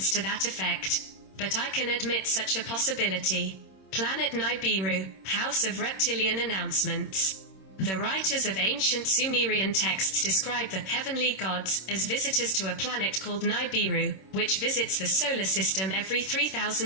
to that effect. But I can admit such a possibility. Planet Nibiru, House of Reptilian Announcements. The writers of ancient Sumerian texts describe the heavenly gods as visitors to a planet called Nibiru, which visits the solar system every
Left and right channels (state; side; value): late; right; 26 ms